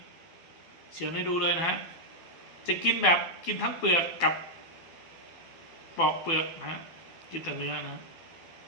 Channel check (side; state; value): right; late; 12 ms